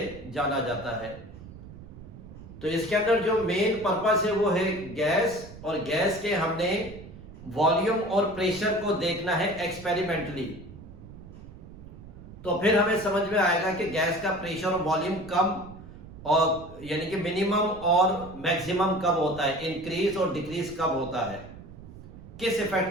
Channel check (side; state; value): right; noise; rumble, 16 dB below the sound